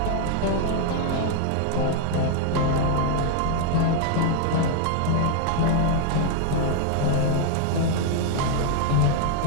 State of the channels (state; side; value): different; both; correlation 0.00